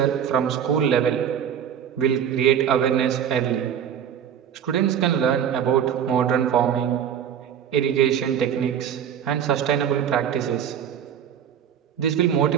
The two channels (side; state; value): left; quieter; 8.8 dB